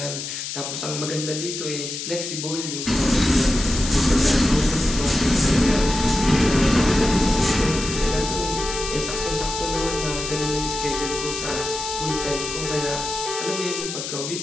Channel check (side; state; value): left; noise; hiss, 6 dB below the sound